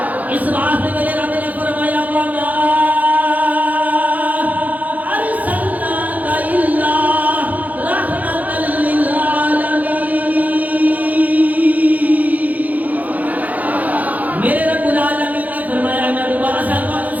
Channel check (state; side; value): late; left; 0.078 ms